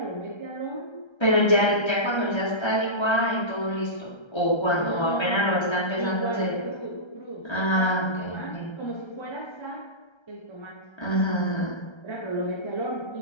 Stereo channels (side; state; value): right; late; 1.3 ms